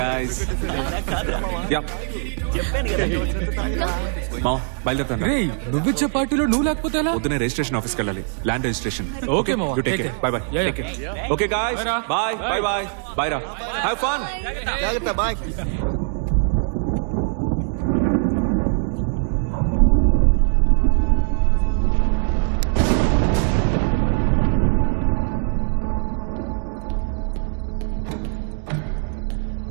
yeah మామ బయలుదేరుతాను రేయ్ నువ్విచ్చే పార్టీలో నువ్వు లేకపోతే ఎలా? పొద్దునే రిజిస్ట్రేషన్ ఆఫీస్కి వెళ్ళాలి ల్యాండ్ రిజిస్ట్రేషన్ Okay, మామ. You take Take care care. By by Yeah, take yeah. Care okay guys Bye, రా. బై బై బై బై రా హావ్ ఫన్ జాగ్రత్త బాయ్.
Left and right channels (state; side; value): silent; left; 58 dB below the other